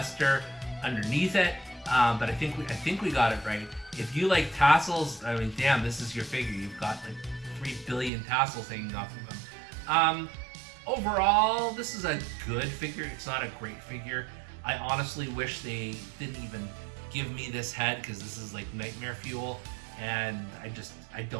underneath it. But I think we got it right. If you like tassels, I mean, damn, this is your figure. You've got like 3 billion tassels hanging off of them. Overall, this is a good figure. It's not a great figure. I honestly wish they didn't even give me this head because this is like nightmare fuel, and I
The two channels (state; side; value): drops out; left; at 8.1 s